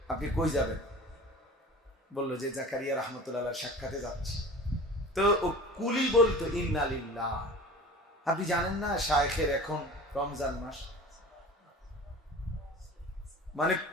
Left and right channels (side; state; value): both; normal; correlation 0.39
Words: আপনি কই যাবেন? বললো যে জাকারিয়া রহমতুল্লাহ সাক্ষাতে যাচ্ছে। তো ও কুলি বলতো ইন্না লিল্লাহ, আপনি জানেন না শায়েখের এখন রমজান মাস। মানে